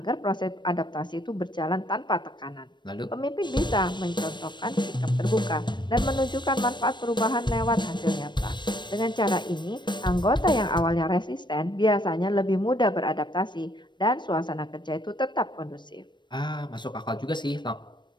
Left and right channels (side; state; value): right; late; 0.22 ms